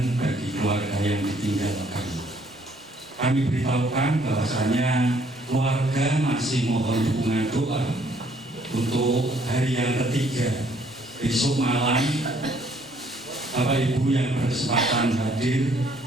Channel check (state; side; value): normal; both; correlation 0.64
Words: bagi keluarga yang ditinggalkan. Kami beritahukan bahwasanya keluarga masih mohon dukungan doa untuk hari yang ketiga besok malam. Bapak Ibu yang berkesempatan hadir